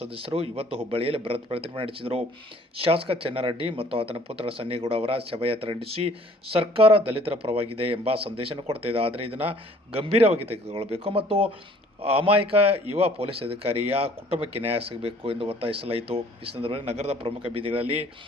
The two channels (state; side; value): normal; both; correlation 0.56